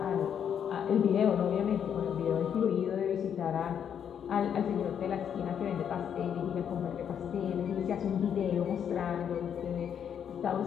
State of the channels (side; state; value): right; quieter; 8.4 dB